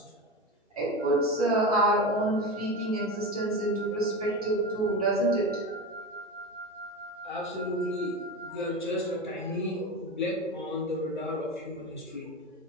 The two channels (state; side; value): normal; both; correlation 0.23